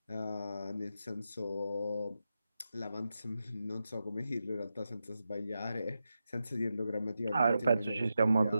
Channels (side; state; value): both; inverted; correlation -0.89